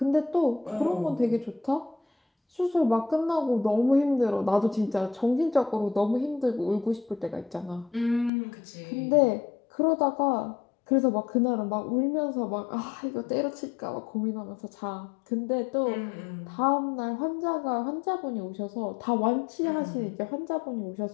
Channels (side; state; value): right; drops out; at 8.3 s